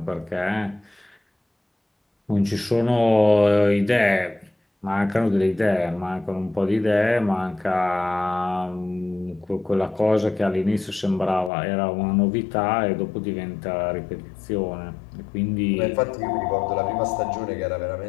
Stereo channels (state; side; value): drops out; right; at 11.5 s